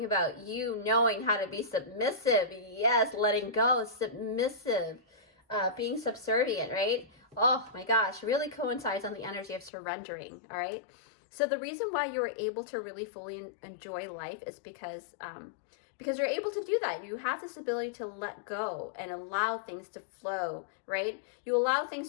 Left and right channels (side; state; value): right; drops out; at 9.7 s